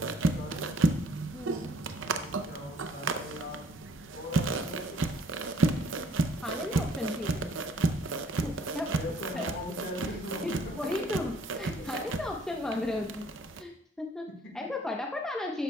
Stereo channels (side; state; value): both; normal; correlation 0.58